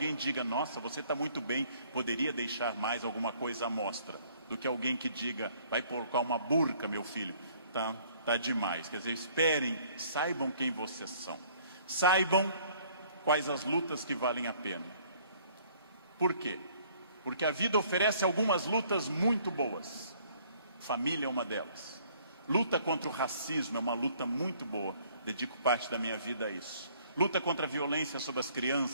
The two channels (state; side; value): inverted; both; correlation -0.59